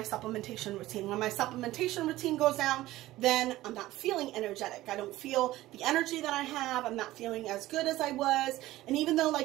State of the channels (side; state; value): left; quieter; 16.4 dB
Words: supplementation routine. When my supplementation routine goes down, then I'm not feeling energetic. I don't feel the energy that I have. I'm not feeling as good as I was. And even though